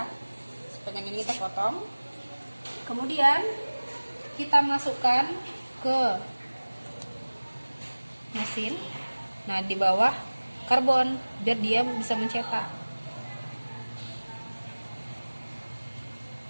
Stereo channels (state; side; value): inverted; both; correlation -1.00